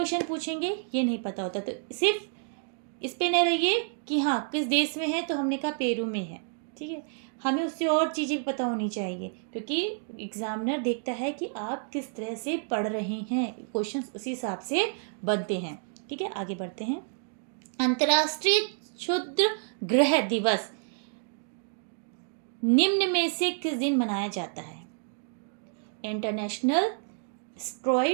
पूछेंगे ये नहीं पता होता। तो सिर्फ इस पे न रहिए कि हाँ किस देश में है, तो हमने कहा पेरू में है। ठीक है, हमें उससे और चीज़ें भी पता होनी चाहिए, क्योंकि एग्जामिनर देखता है कि आप किस तरह से पढ़ रहे हैं, क्वेश्चंस उसी हिसाब से बनते हैं। ठीक है, आगे बढ़ते हैं। अंतर्राष्ट्रीय क्षुद्र ग्रह दिवस निम्न में से किस दिन मनाया जाता है। इंटरनेशनल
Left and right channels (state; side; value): silent; left; 58 dB below the other